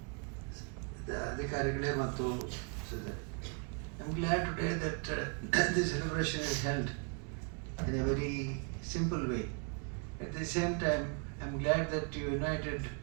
ಅಧಿಕಾರಿಗಳೇ ಮತ್ತು I'm glad today that this celebration is held in a very simple way. At the same time, I'm glad that you united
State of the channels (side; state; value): left; quieter; 37.9 dB